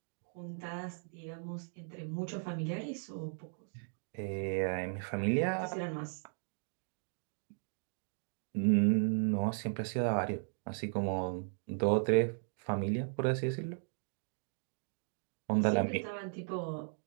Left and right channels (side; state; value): left; silent; digital silence